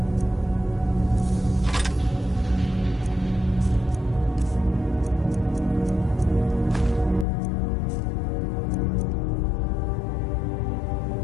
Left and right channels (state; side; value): drops out; right; at 7.2 s